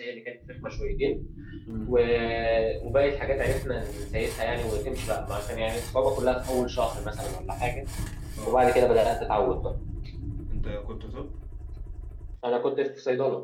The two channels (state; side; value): identical; both; correlation 1.00